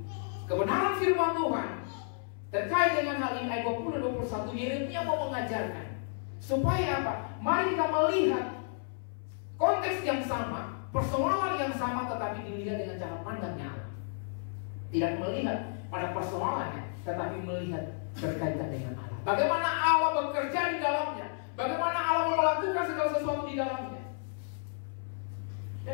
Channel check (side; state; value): right; silent; 56 dB below the other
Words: kebenaran firman Tuhan terkait dengan hal ini ayat 20-21 Yeremia mau mengajarkan supaya apa? Mari kita melihat konteks yang sama, persoalan yang sama, tetapi dilihat dengan cara pandangnya Allah. Tidak melihat pada persoalannya, tetapi melihat berkaitan dengan Allah. Bagaimana Allah bekerja di dalamnya, bagaimana Allah melakukan segala sesuatu di dalamnya.